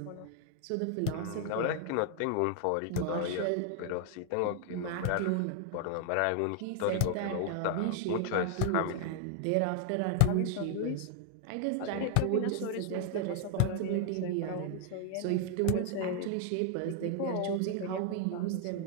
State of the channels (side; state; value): both; different; correlation 0.00